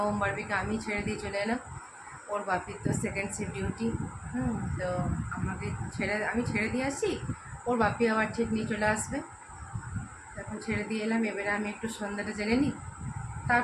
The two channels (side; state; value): both; identical; correlation 1.00